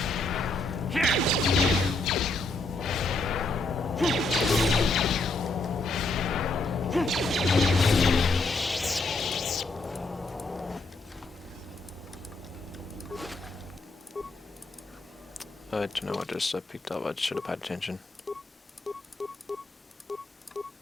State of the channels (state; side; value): quieter; right; 3.2 dB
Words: I don't know what just I picked up, I should have paid attention.